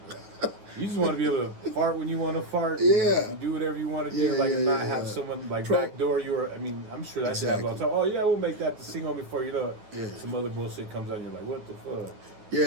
You just want to be able to fart when you want to fart. Yeah. And do whatever you want to do. Not have someone backdoor you. Or I mean, I'm sure that happens all the time. Oh yeah, we'll make that the single before you know it. Some other bullshit comes out and you're like, what the fuck? Yeah,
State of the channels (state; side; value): late; left; 9.7 ms